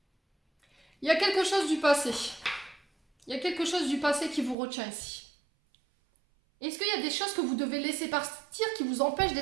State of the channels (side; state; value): left; drops out; at 4.5 s